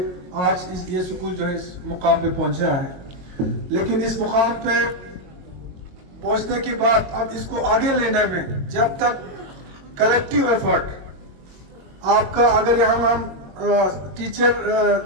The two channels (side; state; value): left; late; 22 ms